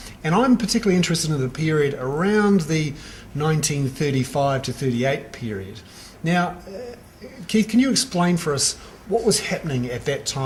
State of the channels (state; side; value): identical; both; correlation 1.00